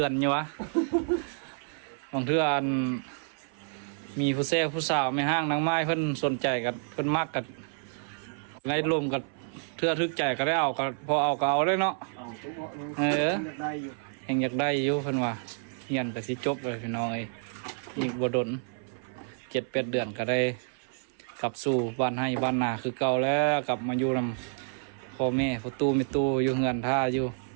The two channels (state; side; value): silent; left; 58 dB below the other